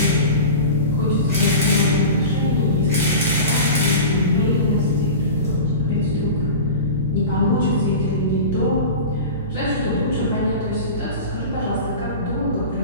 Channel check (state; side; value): inverted; both; correlation -0.31